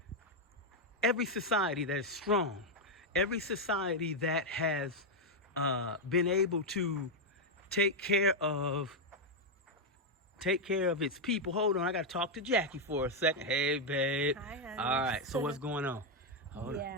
every society that is strong, every society that has been able to take care of its people. Hold on, I gotta talk to Jackie for a second. Hey, babe. Hi, honey. All right, so what's going on? Hold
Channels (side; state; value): both; normal; correlation 0.01